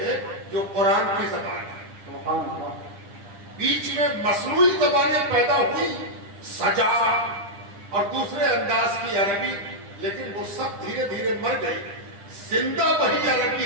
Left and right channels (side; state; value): left; late; 10 ms